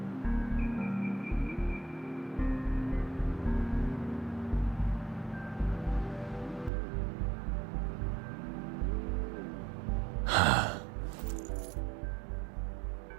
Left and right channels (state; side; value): drops out; left; at 6.7 s